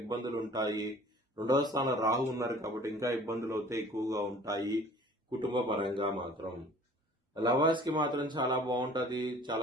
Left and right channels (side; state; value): both; normal; correlation 0.49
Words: ఉంటాయి. 2వ స్థానం రాహు ఉన్నారు కాబట్టి ఇంకా ఇబ్బందులు అయితే ఎక్కువగా ఉంటాయి. కుటుంబ పరంగా మాత్రం లవర్స్ కి మాత్రం చాలా బాగుంటది.